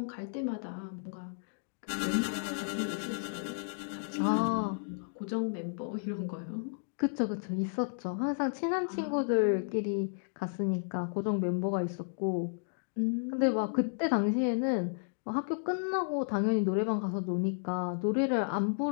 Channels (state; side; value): silent; right; digital silence